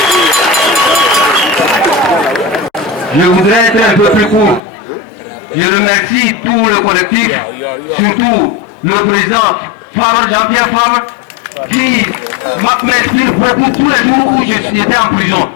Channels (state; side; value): drops out; right; at 4.6 s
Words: Je voudrais être un peu plus court. Je remercie tout le collectif, surtout le président Jean-Pierre Favre, qui m'inspire beaucoup tous les jours où j'étais en prison.